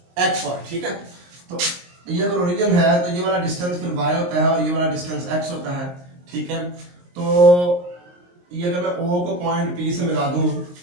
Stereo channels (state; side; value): late; left; 23 ms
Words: x y। ठीक है, तो ये अगर ओरिजिन है तो ये वाला डिस्टेंस फिर y होता है और ये वाला डिस्टेंस x होता है। ठीक है, तो ये अगर मैं O को पॉइंट P से मिला दूं,